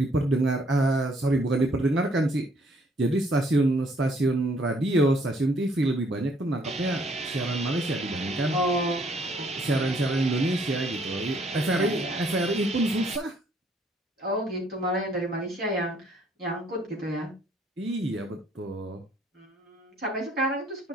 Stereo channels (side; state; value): both; normal; correlation 0.65